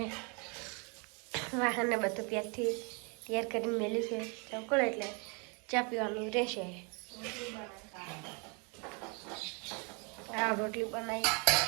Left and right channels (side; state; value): left; quieter; 33.8 dB